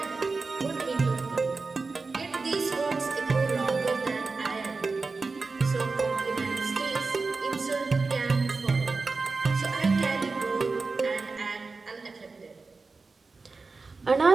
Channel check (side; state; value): left; quieter; 4.1 dB